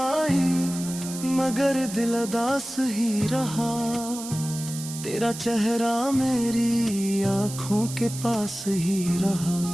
मगर दिल उदास ही रहा, तेरा चेहरा मेरी आँखों के पास ही रहा।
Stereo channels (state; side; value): noise; right; hiss, 11 dB below the sound